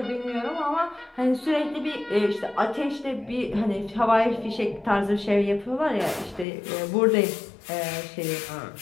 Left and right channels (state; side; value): drops out; right; at 6.5 s